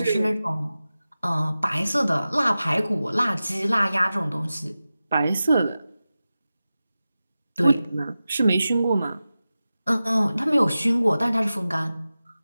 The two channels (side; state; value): both; inverted; correlation -0.95